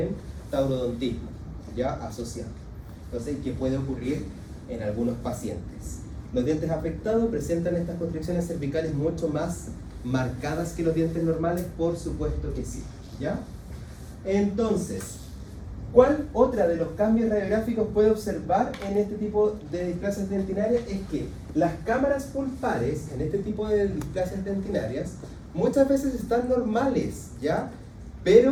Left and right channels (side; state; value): both; identical; correlation 1.00